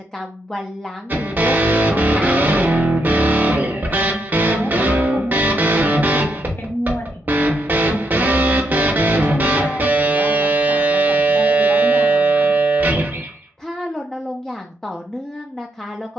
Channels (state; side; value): normal; both; correlation 0.79